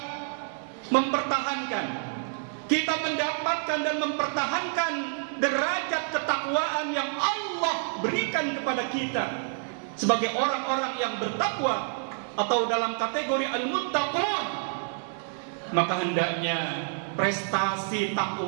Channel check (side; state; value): left; silent; 59 dB below the other